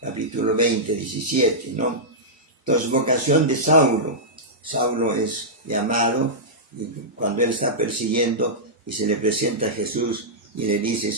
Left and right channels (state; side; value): normal; both; correlation -0.12